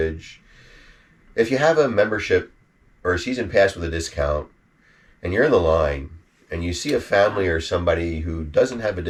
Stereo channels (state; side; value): identical; both; correlation 1.00